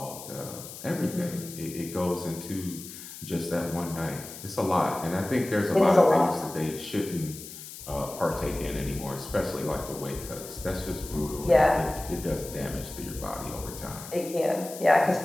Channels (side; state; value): left; noise; hiss, 13 dB below the sound